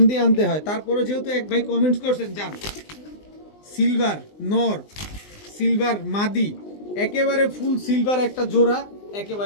দিয়ে আনতে হয়, তারপরে যেহেতু এক ভাই কমেন্টস করছেন যান সিলভার নর সিলভার মাদি একেবারে ফুল সিলভার একটা জোড়া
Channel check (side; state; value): right; late; 20 ms